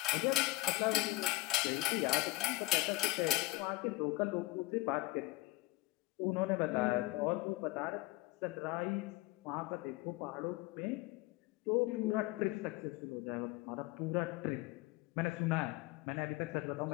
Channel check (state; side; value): quieter; right; 20.4 dB